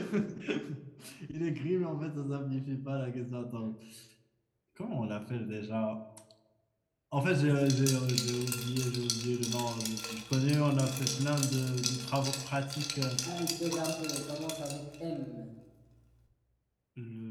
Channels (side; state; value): both; identical; correlation 1.00